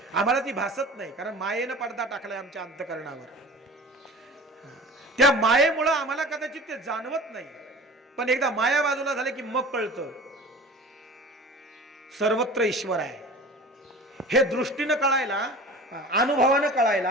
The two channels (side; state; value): both; normal; correlation 0.39